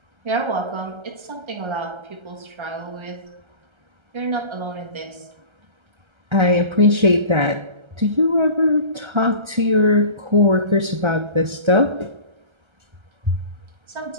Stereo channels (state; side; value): late; left; 1.3 ms